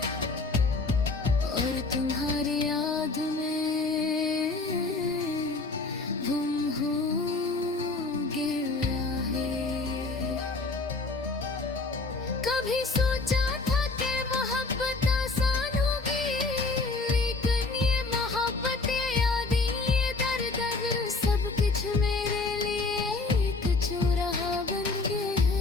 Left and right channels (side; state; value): right; quieter; 3.7 dB